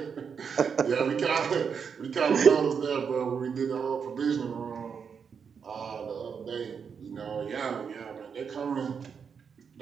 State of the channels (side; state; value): left; quieter; 6.5 dB